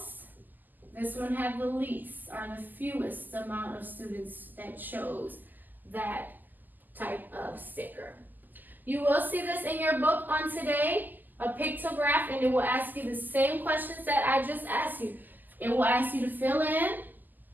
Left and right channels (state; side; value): late; left; 0.086 ms